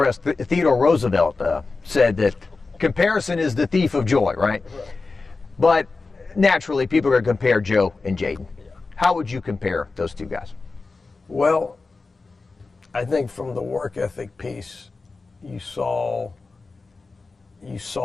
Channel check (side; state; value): right; quieter; 3.9 dB